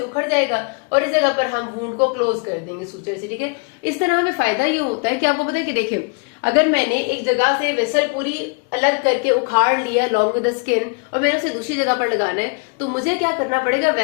उखड़ जाएगा और इस जगह पर हम वुंड को क्लोज कर देंगे सूचर से, ठीक है। इस तरह हमें फायदा ये होता है कि आपको पता है कि देखिए, अगर मैंने एक जगह से वेसल पूरी अलग करके उखाड़ लिया लॉन्ग विद द स्किन और मैंने उसे दूसरी जगह पर लगाना है, तो मुझे क्या करना पड़ेगा,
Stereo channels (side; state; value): right; quieter; 33.8 dB